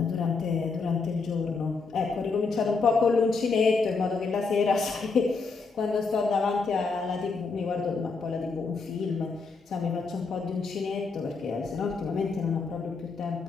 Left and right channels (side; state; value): right; quieter; 4.4 dB